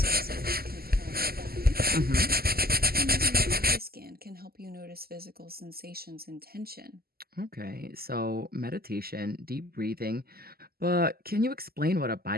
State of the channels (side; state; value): left; late; 0.45 ms